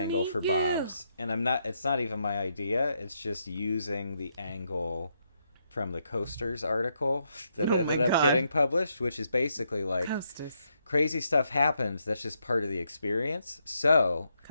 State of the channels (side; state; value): both; inverted; correlation -0.78